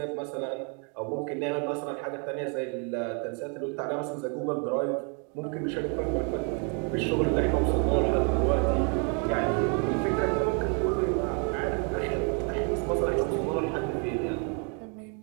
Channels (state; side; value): quieter; left; 37.7 dB